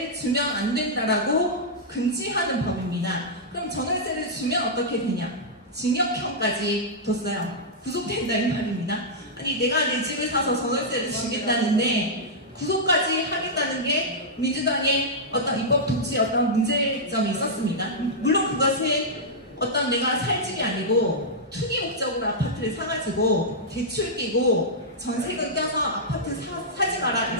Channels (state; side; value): normal; both; correlation -0.09